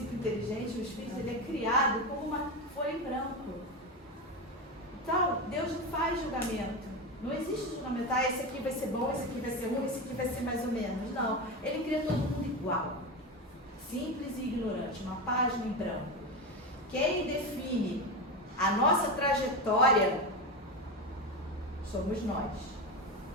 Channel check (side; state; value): both; normal; correlation 0.18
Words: inteligente, o espírito, ele é criado como uma folha em branco. Então, Deus não faz julgamento. Não existe julgamento, esse aqui vai ser bom, esse aqui vai ser ruim, esse aqui vai ser mais ou menos. Não, ele cria todo mundo igual. Simples e ignorante, uma página em branco. Quem define a nossa trajetória somos nós.